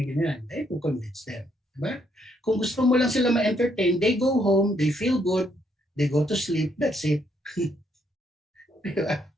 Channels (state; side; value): normal; both; correlation 0.72